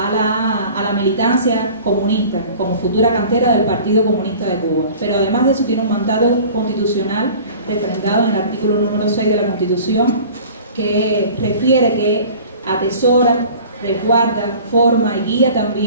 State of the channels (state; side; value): inverted; both; correlation -0.44